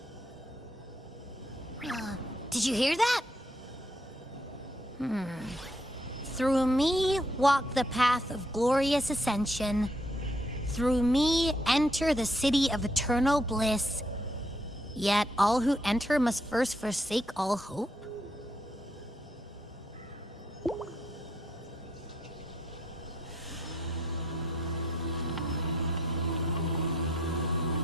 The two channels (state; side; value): normal; both; correlation 0.72